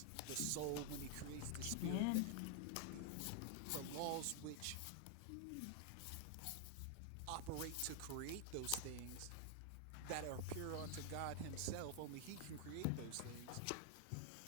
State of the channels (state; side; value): different; both; correlation 0.00